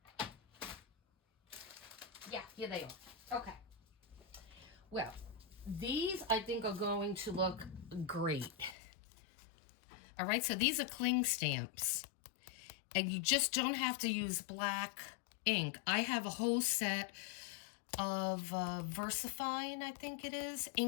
Yeah, here they are. Okay. Well, these I think are going to look great. All right, so these are cling stamps. And you just don't have to use black ink. I have a whole set of VersaFine, I think it is,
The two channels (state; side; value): drops out; right; at 8.8 s